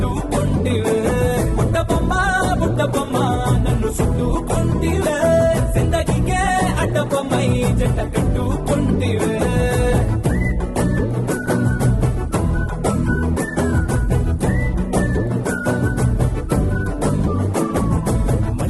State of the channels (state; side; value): identical; both; correlation 1.00